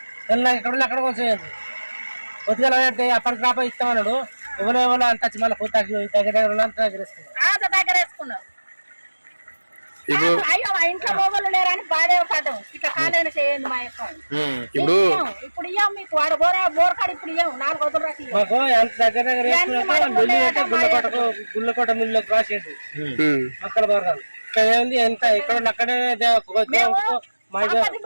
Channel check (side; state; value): both; inverted; correlation -1.00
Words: ఎక్కడ కొంచెం కొద్దిగా అప్పటికి రాప ఇస్తామన్నాడు. ఎవరో అంత వచ్చి మళ్ళీ కొత్త దగ్గర దగ్గర వేసుకున్నాం. ఇంట్లో మొగలు లేరని బాధే పడ్డాం. ఇట్లా కాలేన చేయండి మా యొక్క ఇప్పుడు ఇయ్యం మీకు వాడు బోరకాడు ఇప్పుడు ఇయ్యం 4 రోజులు రాసి మాకు ఎంత దగ్గర గుళ్ళకోట మిల్లులోకి రాసేది అక్కడ బోరకాలు ఇక్కడ ఏంది ఎంత ఇక్కడ అక్కడే